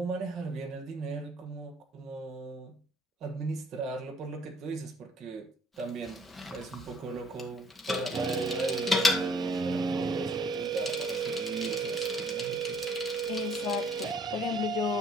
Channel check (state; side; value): normal; both; correlation 0.60